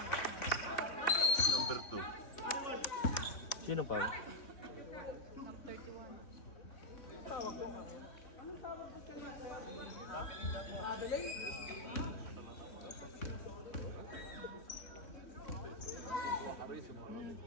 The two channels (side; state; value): right; late; 3.6 ms